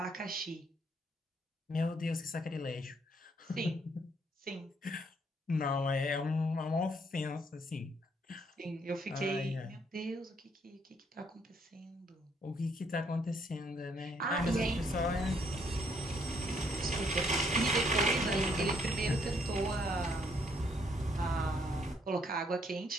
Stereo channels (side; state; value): both; normal; correlation 0.69